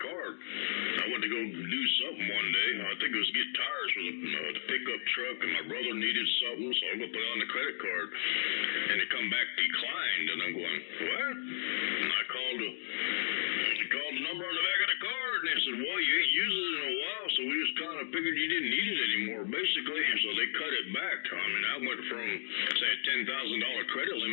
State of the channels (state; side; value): silent; right; digital silence